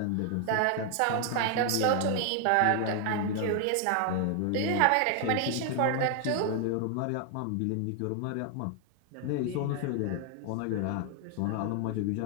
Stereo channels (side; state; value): both; different; correlation 0.00